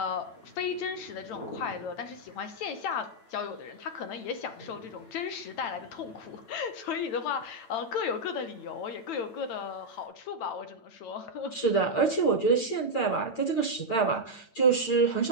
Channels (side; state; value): right; late; 9.0 ms